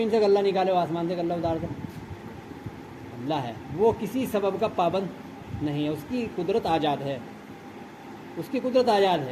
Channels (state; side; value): identical; both; correlation 1.00